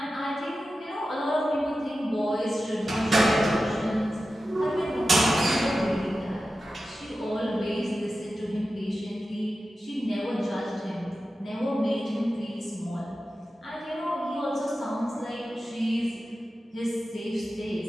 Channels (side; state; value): both; normal; correlation 0.93